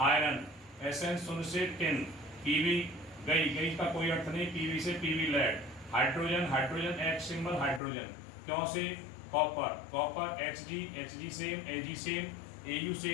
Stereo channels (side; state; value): right; drops out; at 7.8 s